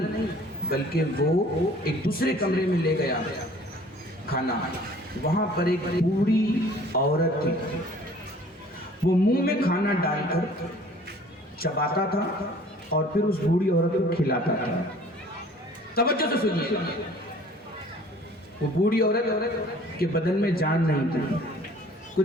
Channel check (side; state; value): both; normal; correlation 0.52